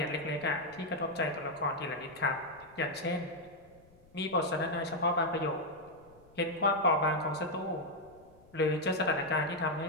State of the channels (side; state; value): left; noise; rumble, 27 dB below the sound